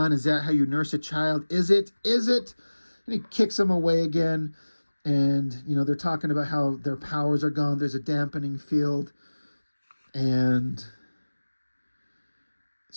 Is that how you nurse a child? Is it? Is it? And he kicks them away again. And, you know, they're talking about how their powers are gone. There's a dampening field. And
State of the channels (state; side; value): inverted; both; correlation -1.00